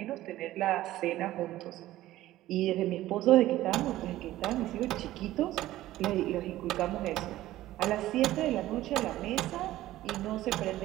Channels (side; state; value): left; quieter; 15.2 dB